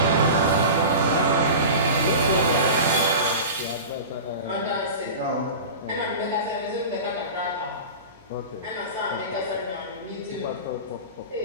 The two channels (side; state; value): both; inverted; correlation -0.31